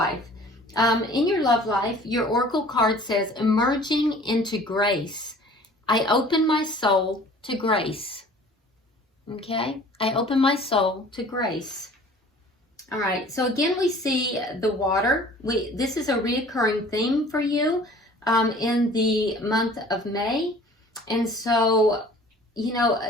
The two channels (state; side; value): normal; both; correlation 0.49